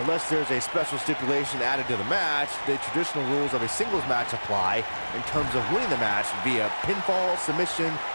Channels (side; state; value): both; inverted; correlation -1.00